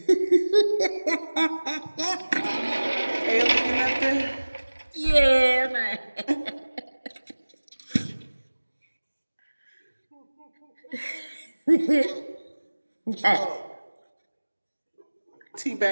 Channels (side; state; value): both; inverted; correlation -1.00